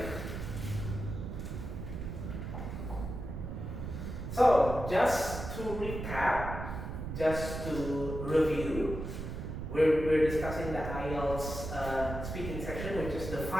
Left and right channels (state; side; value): noise; right; rumble, 6 dB below the sound